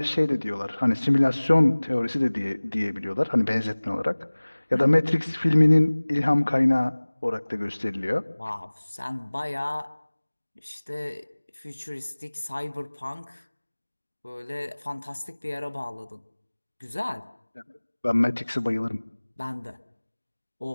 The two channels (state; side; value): inverted; both; correlation -1.00